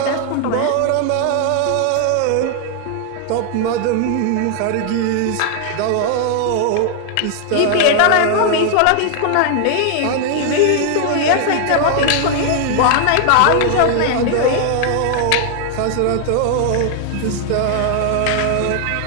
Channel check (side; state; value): both; different; correlation 0.00